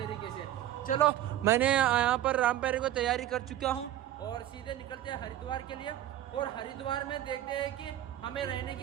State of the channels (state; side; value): quieter; left; 12.7 dB